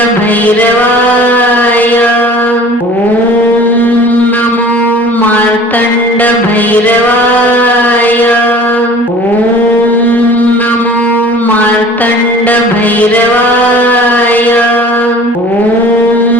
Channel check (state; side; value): normal; both; correlation 0.46